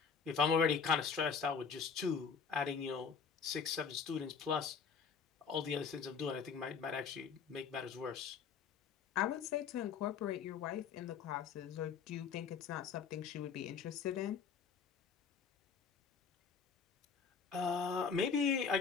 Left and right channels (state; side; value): quieter; right; 6.1 dB